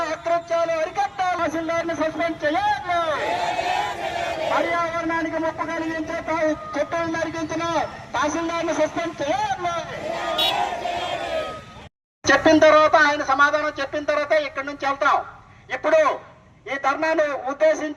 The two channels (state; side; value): identical; both; correlation 1.00